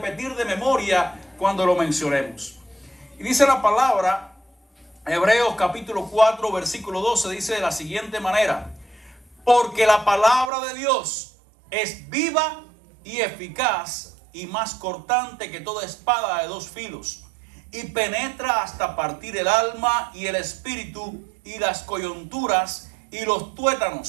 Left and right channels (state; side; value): drops out; left; at 10.5 s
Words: de memoria cuando lo mencionemos. Y dice la palabra, Hebreos capítulo 4, versículo 12, dice de la siguiente manera: porque la palabra de Dios es viva y eficaz y más cortante que toda espada de dos filos, y penetra hasta partir el alma y el espíritu y las coyunturas y los